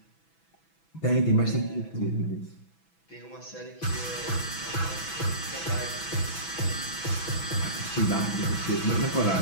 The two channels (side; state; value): right; late; 6.1 ms